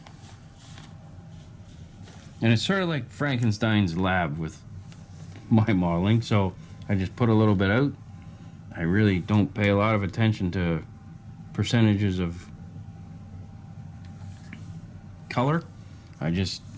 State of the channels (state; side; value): identical; both; correlation 1.00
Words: and it's sort of like Frankenstein's lab with my modeling. So I just put a little bit out. I really don't pay a lot of attention to percentages of color. I just